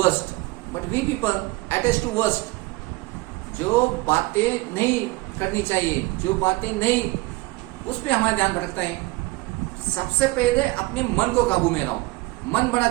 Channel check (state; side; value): quieter; left; 22.2 dB